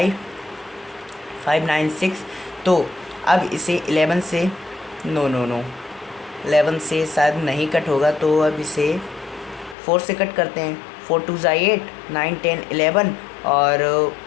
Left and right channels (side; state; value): right; drops out; at 9.8 s